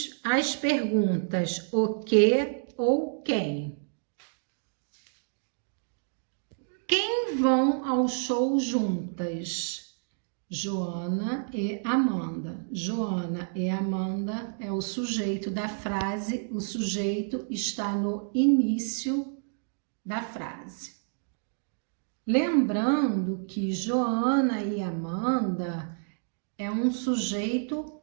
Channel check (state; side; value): silent; left; digital silence